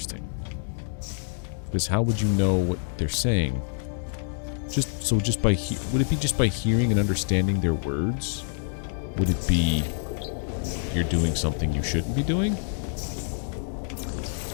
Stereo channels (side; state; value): right; silent; digital silence